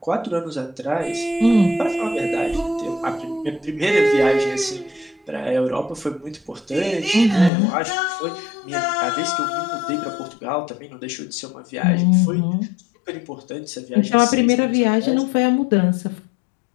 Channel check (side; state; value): right; drops out; at 7.5 s